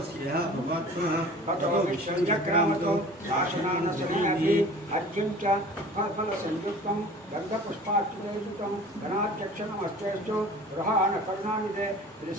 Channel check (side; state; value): both; normal; correlation 0.43